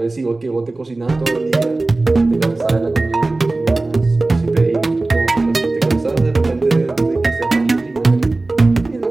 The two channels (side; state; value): left; quieter; 3.1 dB